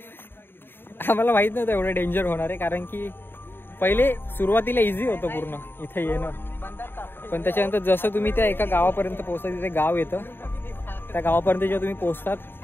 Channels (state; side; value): late; right; 0.10 ms